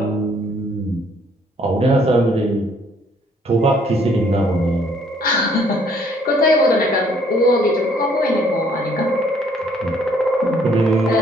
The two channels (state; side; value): normal; both; correlation 0.63